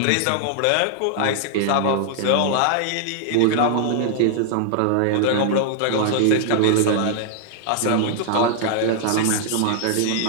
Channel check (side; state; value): both; different; correlation -0.01